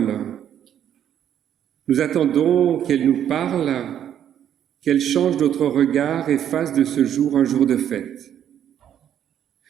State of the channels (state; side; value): quieter; left; 10.0 dB